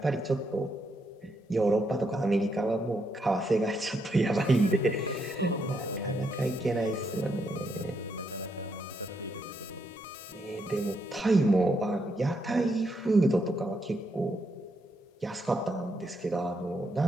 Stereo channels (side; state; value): both; normal; correlation 0.78